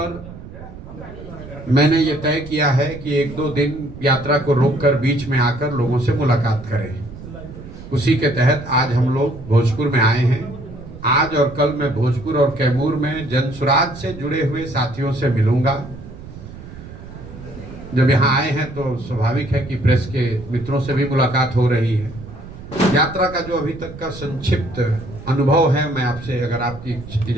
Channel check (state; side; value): noise; right; rumble, 15 dB below the sound